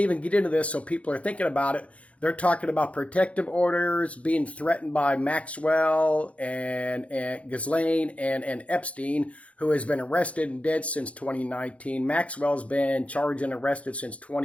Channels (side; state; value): right; late; 0.064 ms